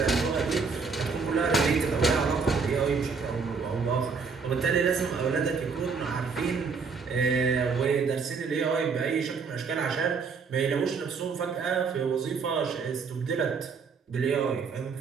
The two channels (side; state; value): left; quieter; 5.2 dB